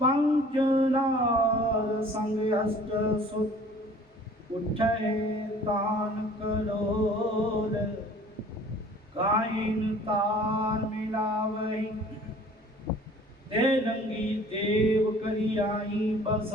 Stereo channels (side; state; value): both; normal; correlation 0.50